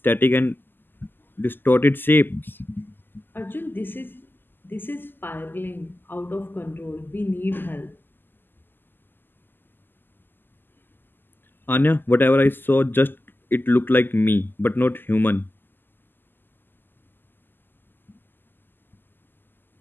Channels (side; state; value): right; late; 0.093 ms